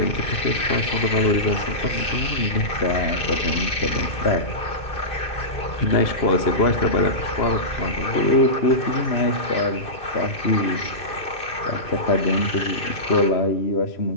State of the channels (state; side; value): late; right; 2.5 ms